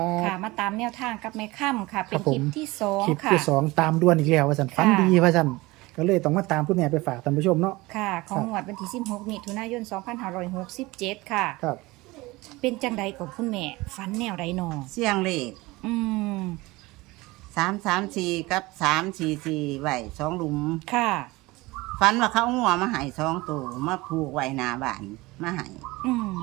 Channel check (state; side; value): quieter; left; 21.4 dB